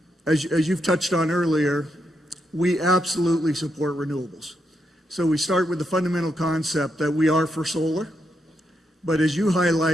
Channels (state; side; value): normal; both; correlation 0.81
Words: as you've touched on earlier, we absolutely support renewables. So we start with the fundamental concept that we are for solar. But as you